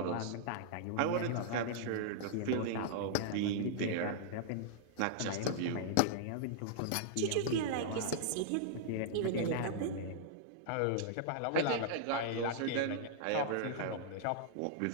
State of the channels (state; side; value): different; both; correlation -0.01